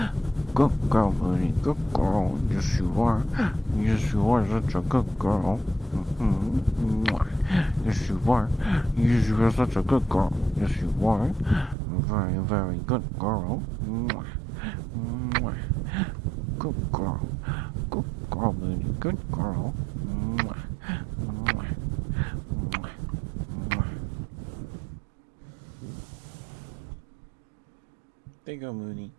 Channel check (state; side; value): drops out; left; at 11.8 s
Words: Good girl, Mooney. Good girl. Yes, you are. Yes, you are such a good girl. Yes, you are. Yes, you are such a good girl. Yes, you are. Very, very good girl. Good girl. Good girl, Mooney. Good girl. There you go, Mooney.